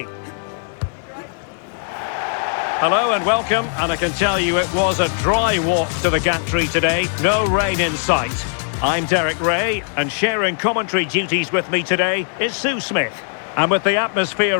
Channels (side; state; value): right; silent; 66 dB below the other